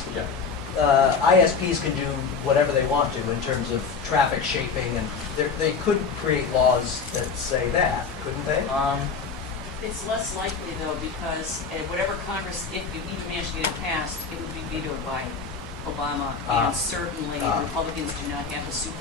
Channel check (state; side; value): quieter; right; 5.2 dB